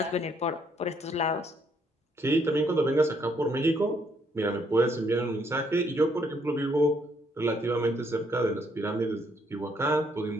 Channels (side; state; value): both; normal; correlation 0.70